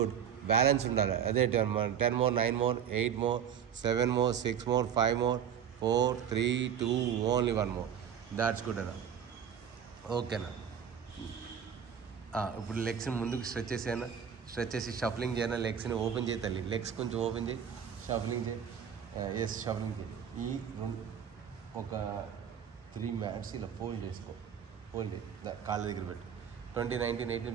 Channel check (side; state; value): left; quieter; 8.4 dB